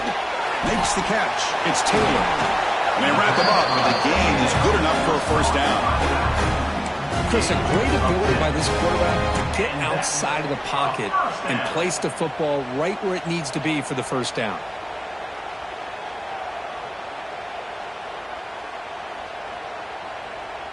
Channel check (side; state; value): both; identical; correlation 1.00